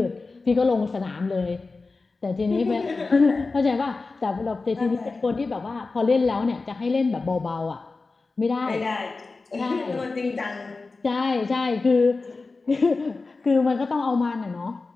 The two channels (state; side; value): quieter; right; 3.8 dB